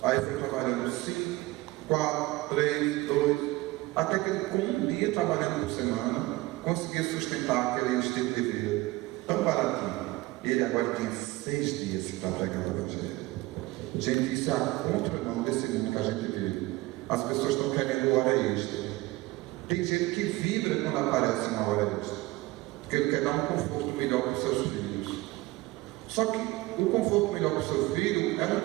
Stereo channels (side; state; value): left; quieter; 19.9 dB